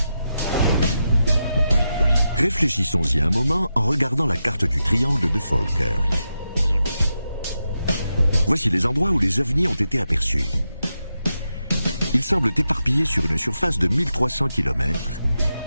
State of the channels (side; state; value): both; inverted; correlation -0.87